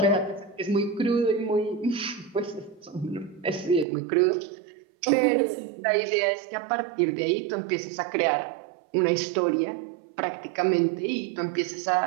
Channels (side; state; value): left; drops out; at 3.9 s